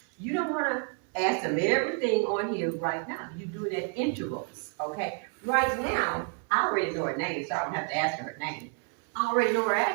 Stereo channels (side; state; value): left; quieter; 37.7 dB